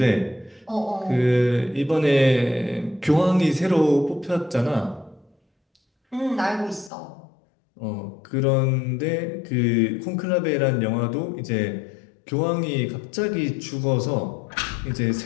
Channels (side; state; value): right; drops out; at 6.9 s